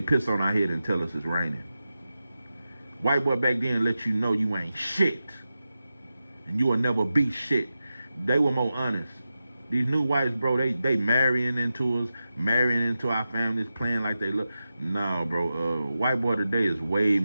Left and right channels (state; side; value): inverted; both; correlation -0.91